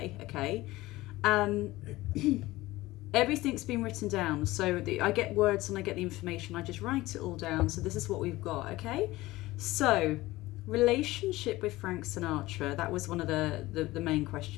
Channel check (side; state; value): right; quieter; 18.5 dB